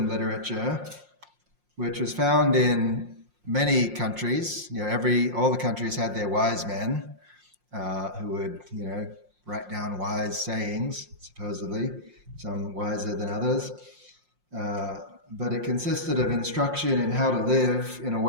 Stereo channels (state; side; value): late; left; 5.6 ms